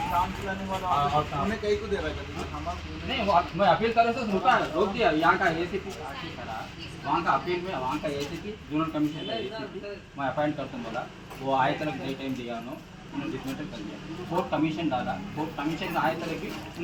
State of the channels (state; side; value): identical; both; correlation 1.00